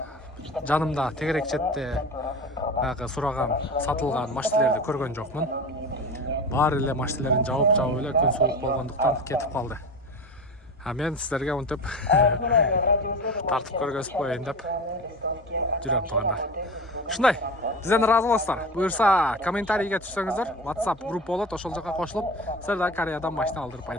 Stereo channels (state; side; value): normal; both; correlation 0.29